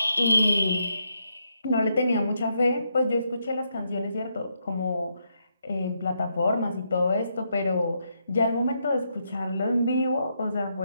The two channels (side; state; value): both; inverted; correlation -0.79